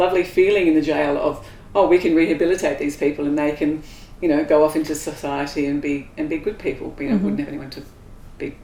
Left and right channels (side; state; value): both; identical; correlation 1.00